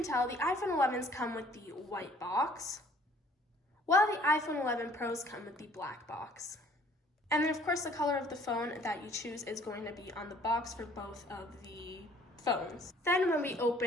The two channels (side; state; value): both; normal; correlation 0.57